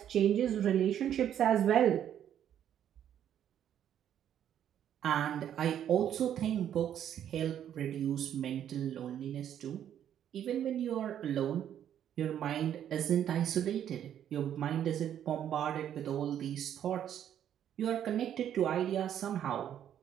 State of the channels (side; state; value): left; quieter; 10.1 dB